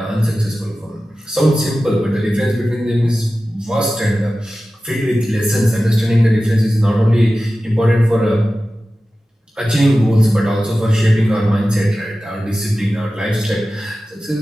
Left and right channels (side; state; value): both; normal; correlation 0.95